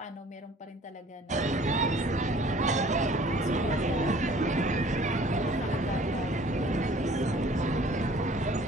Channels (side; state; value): both; normal; correlation 0.52